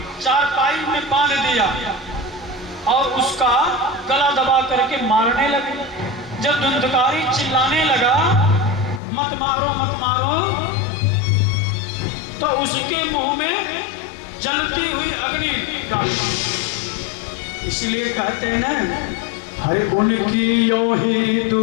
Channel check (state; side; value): drops out; right; at 9.0 s